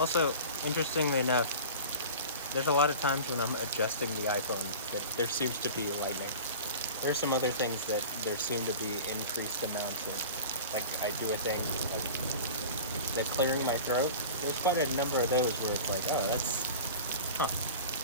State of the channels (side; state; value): both; inverted; correlation -0.36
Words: interestingly enough, there's a lot of times when I'm adjusting the iPhone that there seems to be lightning. There are some other things that there seem to be increased amounts of, like I do a thing, like the clearing my throat. There's quite a number of those where it's like, oh, that's,